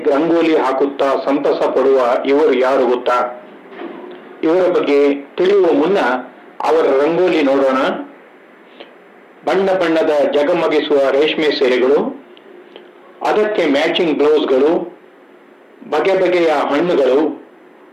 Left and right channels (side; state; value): both; identical; correlation 1.00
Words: ರಂಗೋಲಿ ಹಾಕುತ್ತಾ ಸಂತಸ ಪಡುವ ಇವರು ಯಾರು ಗೊತ್ತಾ? ಇವರ ಬಗ್ಗೆ ತಿಳಿಯುವ ಮುನ್ನ ಅವರ ರಂಗೋಲಿ ನೋಡೋಣ. ಬಣ್ಣ ಬಣ್ಣದ ಜಗಮಗಿಸುವ ರೇಷ್ಮೆ ಸೀರೆಗಳು, ಅದಕ್ಕೆ ಮ್ಯಾಚಿಂಗ್ ಬ್ಲೌಸ್ಗಳು, ಬಗೆ ಬಗೆಯ ಹಣ್ಣುಗಳು,